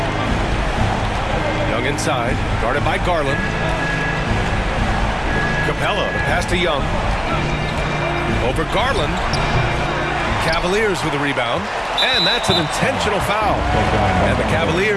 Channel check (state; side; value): identical; both; correlation 1.00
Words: Young inside, guarded by Garland. Capella, the pass to Young. Over Garland. Cavaliers with the rebound. And that's an intentional foul. And the